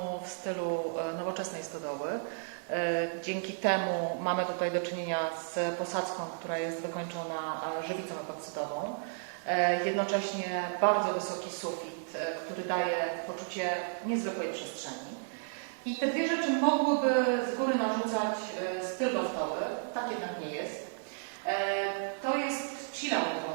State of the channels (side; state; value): left; silent; 56 dB below the other